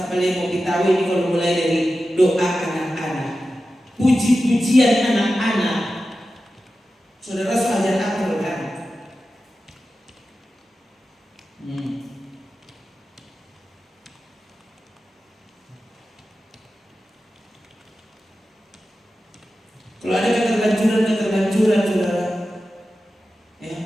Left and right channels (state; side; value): normal; both; correlation 0.93